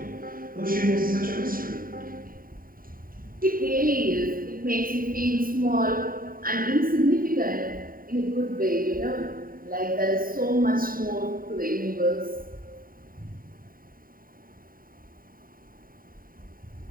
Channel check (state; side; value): late; left; 0.41 ms